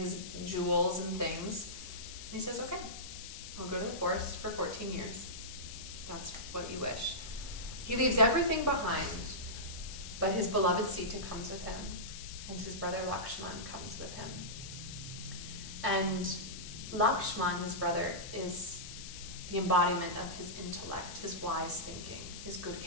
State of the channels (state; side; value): noise; left; hiss, 11 dB below the sound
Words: his jewels and things, and he says, okay, I'll go to the forest for 14 years. That's what you wish. He leaves everything behind, but his beloved Sita comes with him, and his brother Lakshman comes with him. And Lakshman, his brother, is the embodiment of his intellect, his wise thinking, his good